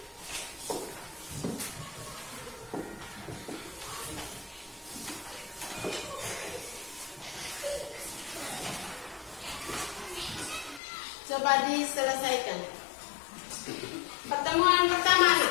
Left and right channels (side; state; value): right; drops out; at 10.8 s